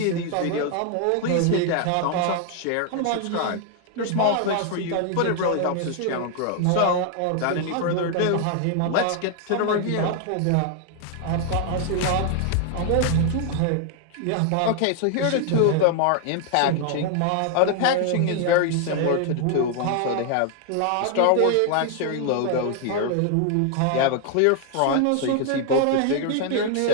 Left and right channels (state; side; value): different; both; correlation 0.00